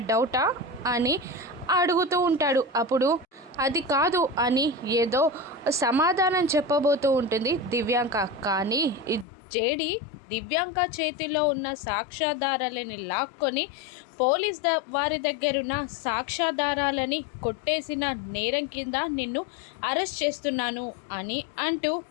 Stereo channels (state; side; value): drops out; right; at 9.2 s